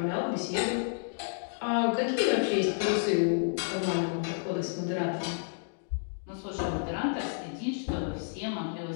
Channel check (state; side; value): silent; right; digital silence